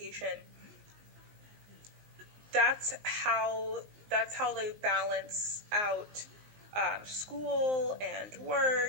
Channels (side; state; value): left; late; 19 ms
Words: that's how they balance out school and